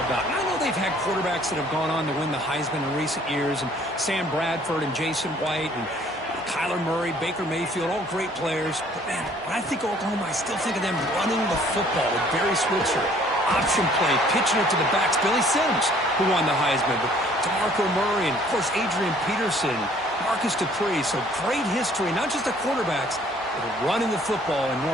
about. And I know they've had quarterbacks that have gone on to win the Heisman in recent years, and Sam Bradford and Jason White and Kyler Murray, Baker Mayfield, all great players. But, man, when I think of Oklahoma, I still think of them running the football with Barry Switzer. Option play, pitching it to the backs. Billy Sims, who won the Heisman. But DeMarco Murray and, of course, Adrian Peterson, Marcus Dupree. So great history, not just the quarterbacks, but running the football in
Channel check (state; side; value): normal; both; correlation 0.58